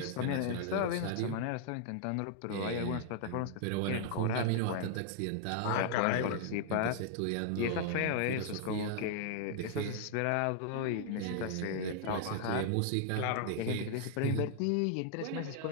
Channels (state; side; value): different; both; correlation -0.01